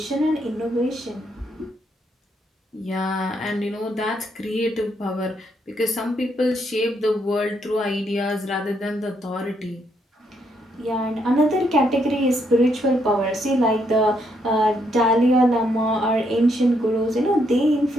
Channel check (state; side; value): normal; both; correlation 0.75